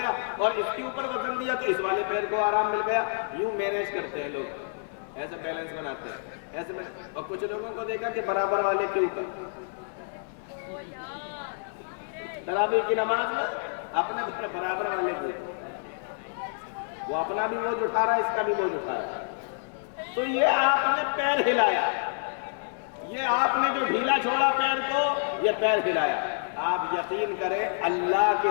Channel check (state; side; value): silent; right; 59 dB below the other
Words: اور اس کے اوپر وزن دیا تو اس والے پیر کو آرام مل گیا۔ یوں مینیج کرتے ہیں لوگ، ایسے بیلنس بناتے ہیں ایسے میں، اور کچھ لوگوں کو دیکھا کہ برابر والے کے اوپر تراویح کی نماز میں اپنے برابر والے کو، وہ اپنا بھی بوجھ اٹھا رہا ہے، اس کا بھی بوجھ اٹھا رہا ہے، تو یہ آپ نے پیر ہلایا، یہ آپ نے جو ڈھیلا چھوڑا پیر کو، یہ پیر ہلایا۔ آپ یقین کریں اللہ کے